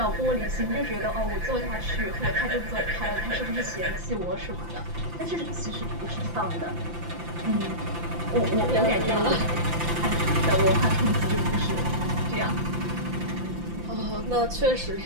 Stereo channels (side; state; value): left; late; 5.8 ms